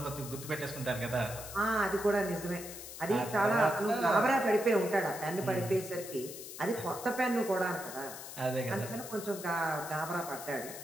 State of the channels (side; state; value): left; noise; hiss, 11 dB below the sound